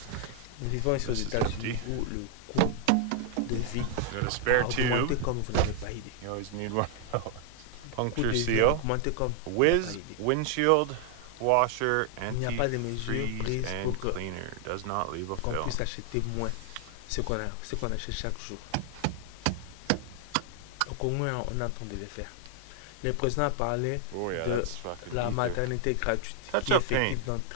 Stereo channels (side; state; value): both; different; correlation 0.00